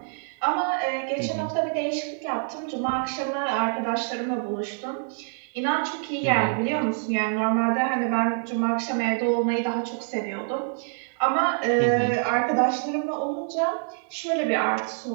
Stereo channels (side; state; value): left; silent; 61 dB below the other